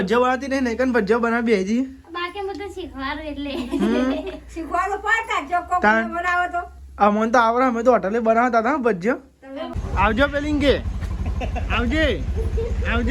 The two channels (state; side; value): identical; both; correlation 1.00